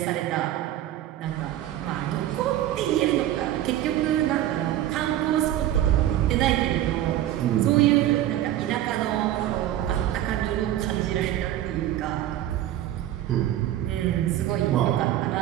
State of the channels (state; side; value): quieter; left; 12.9 dB